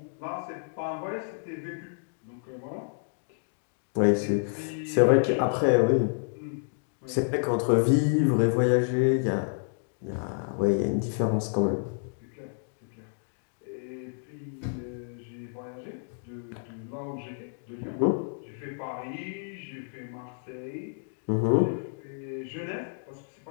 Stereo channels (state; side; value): silent; right; digital silence